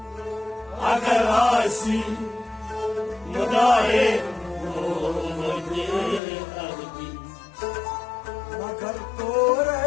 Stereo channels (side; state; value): right; drops out; at 6.2 s